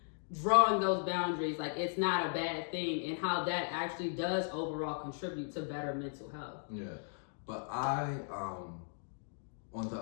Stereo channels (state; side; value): silent; right; digital silence